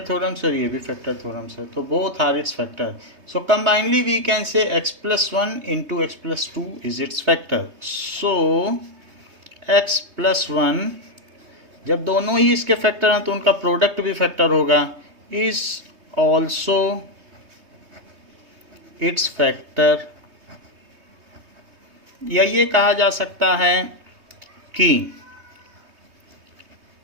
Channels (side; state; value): left; late; 3.2 ms